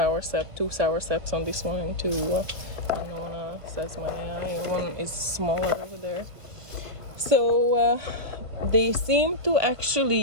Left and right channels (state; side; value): late; left; 1.5 ms